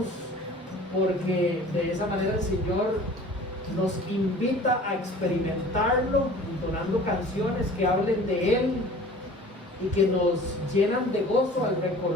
porque de esa manera el Señor nos invita a experimentarlo, entonando canciones que hablen de Él y que nos llenan de gozo al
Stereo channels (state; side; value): normal; both; correlation 0.45